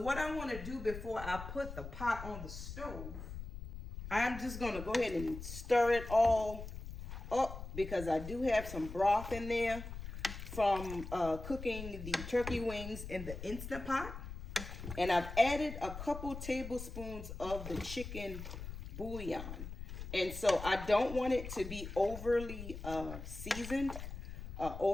I want to do before I put the pot on the stove, I'm just going to go ahead and stir it all up because I do have some broth in there from cooking the turkey wings in the Instant Pot. And I've added a couple tablespoons of the chicken bouillon. And so I don't want it to be overly seasoned,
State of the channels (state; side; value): noise; left; rumble, 9 dB below the sound